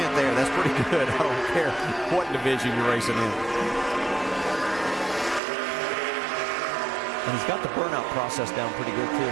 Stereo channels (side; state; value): left; drops out; at 5.4 s